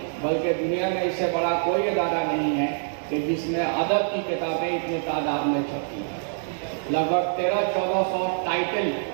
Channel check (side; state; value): left; silent; digital silence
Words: बल्कि दुनिया में इससे बड़ा कोई अदारा नहीं है कि जिसमें अदब की किताबें इतनी तादाद में छपती हैं। लगभग 1300-1400 टाइटल